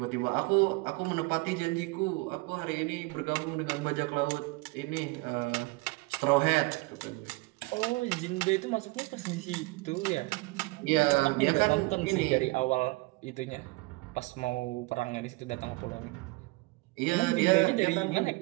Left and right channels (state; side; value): quieter; left; 24.1 dB